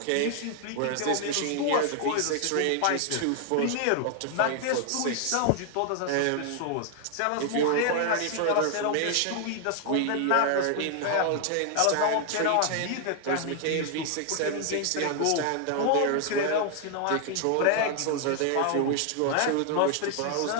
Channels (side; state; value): both; different; correlation 0.00